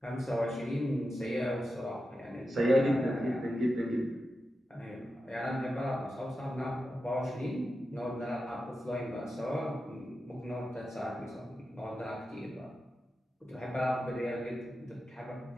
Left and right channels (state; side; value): normal; both; correlation 0.90